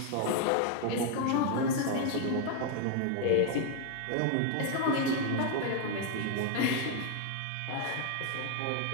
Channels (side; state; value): both; different; correlation 0.00